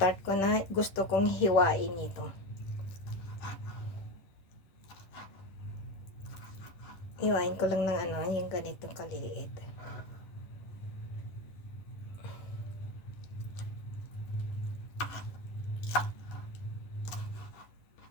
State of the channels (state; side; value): late; right; 10 ms